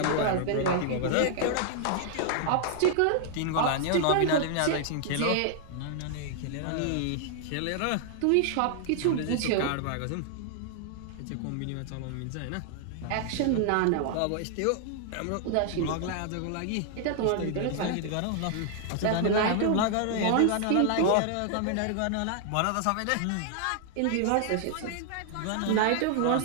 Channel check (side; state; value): both; different; correlation 0.00